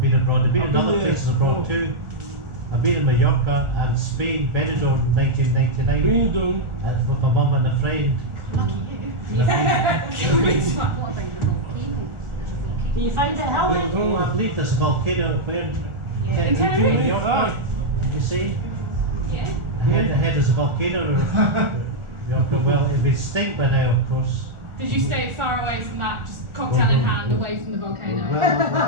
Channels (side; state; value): left; late; 1.4 ms